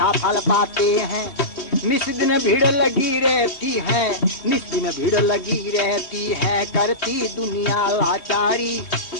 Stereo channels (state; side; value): late; right; 3.1 ms